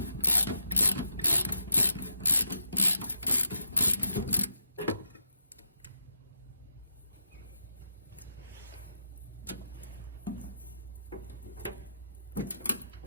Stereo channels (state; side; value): inverted; both; correlation -0.82